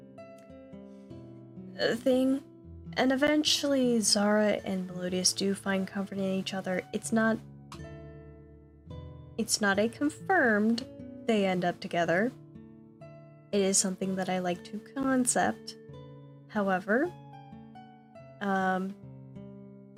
thing. And eventually Zara and Melodious do find comfort in each other. It's not a confirmed they end up together. It is something that I like to concept. However,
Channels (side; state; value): both; identical; correlation 1.00